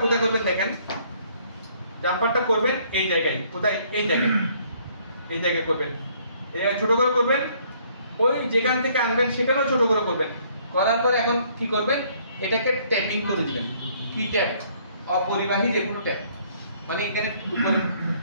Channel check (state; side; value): inverted; both; correlation -0.63